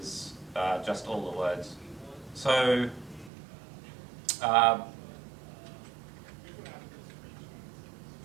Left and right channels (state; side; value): drops out; left; at 3.3 s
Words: just all the words. So